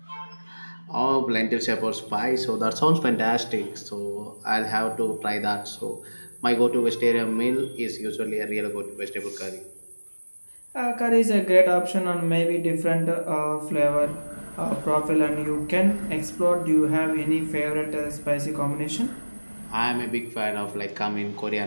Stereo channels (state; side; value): inverted; both; correlation -1.00